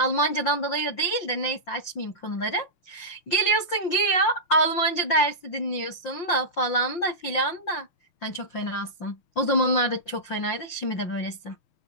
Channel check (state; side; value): late; right; 5.8 ms